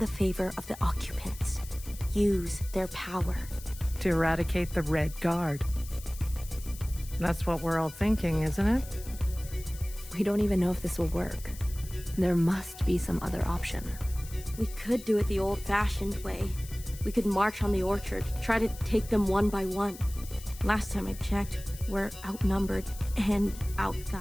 favor of the occupants. Use their power. To eradicate the Red Guard. That's what we're all thinking, isn't it? We don't even know if this will work. There must be some other option. We could do it the old-fashioned way. We could march on the orchard, try to take them one by one. Last time I checked, we're outnumbered and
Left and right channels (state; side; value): noise; left; hiss, 16 dB below the sound